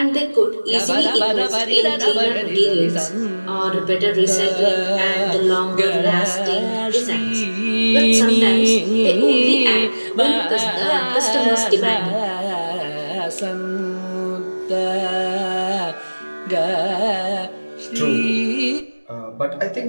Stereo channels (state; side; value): inverted; both; correlation -1.00